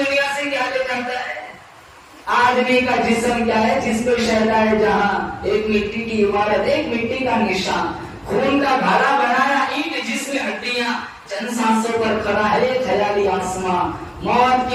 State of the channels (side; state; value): both; identical; correlation 1.00